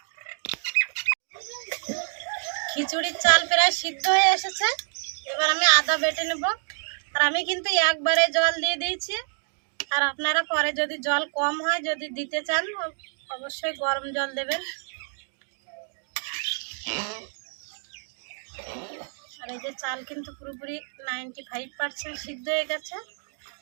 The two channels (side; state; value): left; silent; 60 dB below the other